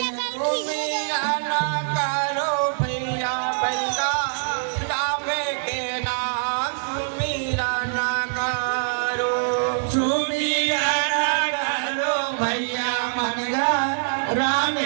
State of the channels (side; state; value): left; silent; 57 dB below the other